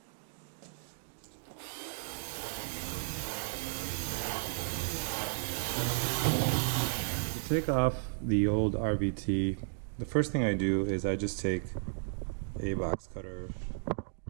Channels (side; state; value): left; silent; digital silence